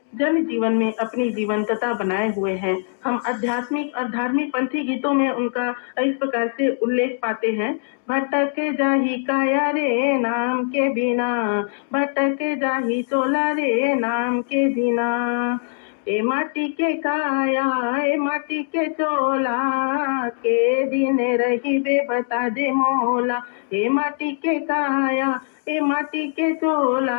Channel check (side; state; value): right; silent; digital silence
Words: जन जीवन में अपनी जीवंतता बनाए हुए हैं। हम आध्यात्मिक और धार्मिक पंथी गीतों में उनका इस प्रकार से उल्लेख पाते हैं। भटक जाही काया रे नाम के बिना, भटक जाही चोला रे नाम के बिना, ए माटी के काया ए माटी के चोला, के दिन रही बे बता दे मोला, ए माटी के काया ए माटी के चोला,